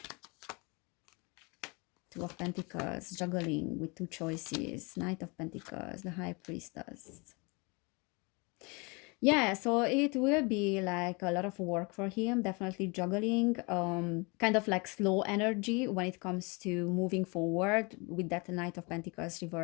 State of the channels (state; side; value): quieter; right; 29.1 dB